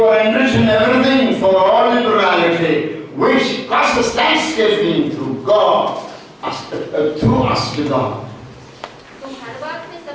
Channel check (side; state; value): both; identical; correlation 1.00